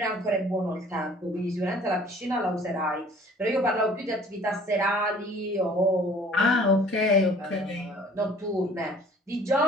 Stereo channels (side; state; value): both; normal; correlation 0.52